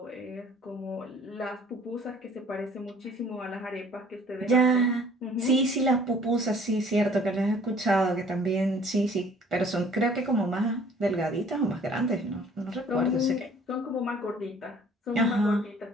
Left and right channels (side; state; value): both; normal; correlation 0.55